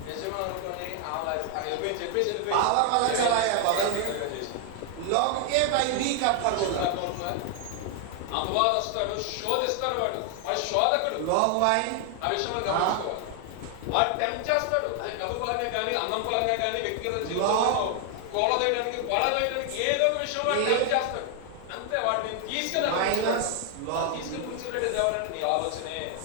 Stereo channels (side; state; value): both; different; correlation 0.00